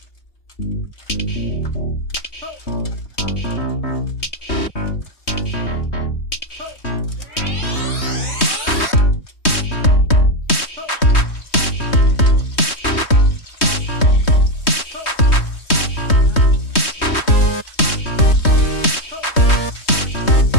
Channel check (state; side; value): late; right; 3.2 ms